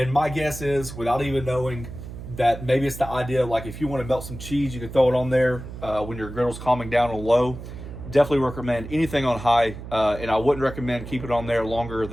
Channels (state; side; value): noise; right; hum, 11 dB below the sound